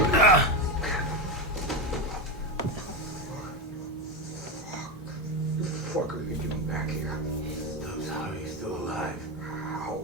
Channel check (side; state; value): both; normal; correlation 0.14